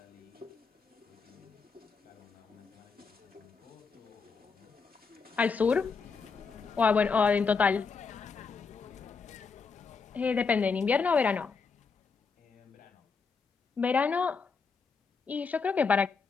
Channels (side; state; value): right; quieter; 5.1 dB